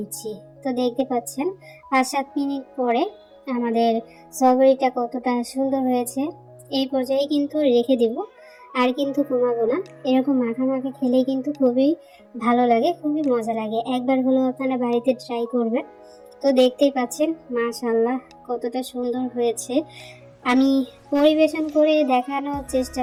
তো দেখতে পাচ্ছেন 5-7 মিনিট পরে আমাদের সয়াবিনটা কতটা সুন্দর হয়েছে। এই পর্যায়ে কিন্তু রেখে দেব, আর কিন্তু কমাবো না। এরকম মাখা মাখা খেলেই কিন্তু খুবই ভালো লাগে, খুবই মজা লাগে। একবার হলেও আপনারা বাড়িতে ট্রাই করবেন। তো দেখতেই পাচ্ছেন মাশাআল্লাহ কতটা সুন্দর হয়েছে। আমি পরিবেশন করে দেখানোর চেষ্টা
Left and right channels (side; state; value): both; identical; correlation 1.00